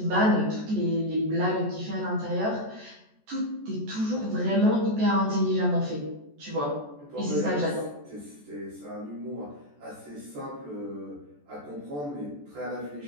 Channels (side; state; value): left; late; 14 ms